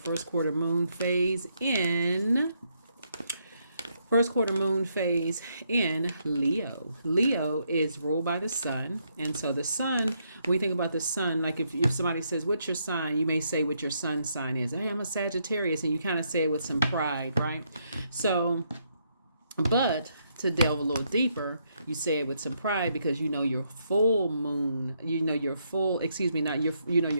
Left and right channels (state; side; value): inverted; both; correlation -0.76